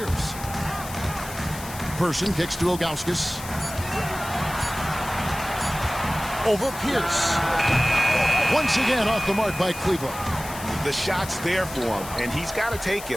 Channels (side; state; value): left; noise; hiss, 13 dB below the sound